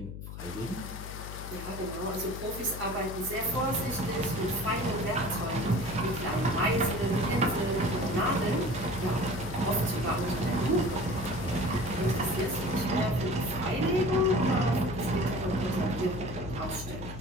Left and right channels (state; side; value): noise; left; hum, 10 dB below the sound